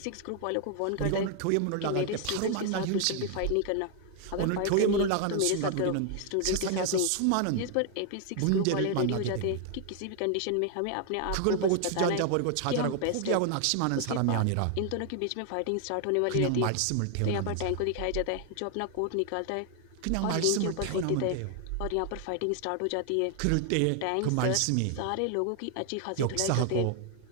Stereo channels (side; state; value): both; different; correlation 0.00